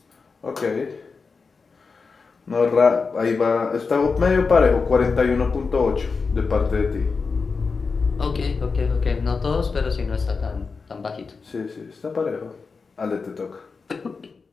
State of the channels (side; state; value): right; quieter; 4.7 dB